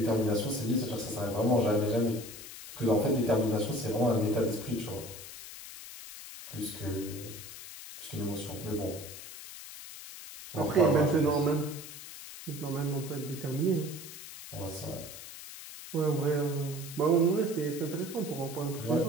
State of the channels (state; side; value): noise; left; hiss, 13 dB below the sound